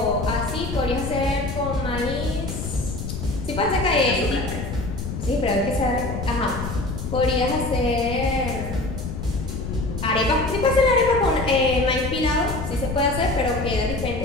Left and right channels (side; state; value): left; noise; rumble, 6 dB below the sound